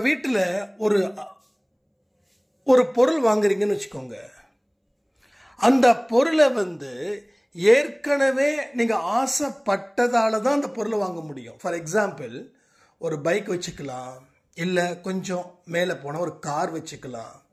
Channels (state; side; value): identical; both; correlation 1.00